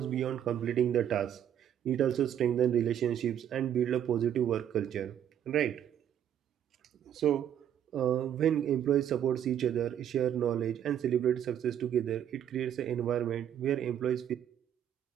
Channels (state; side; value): quieter; left; 9.8 dB